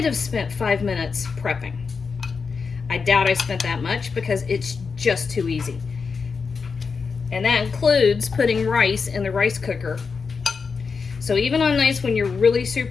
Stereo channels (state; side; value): quieter; right; 5.2 dB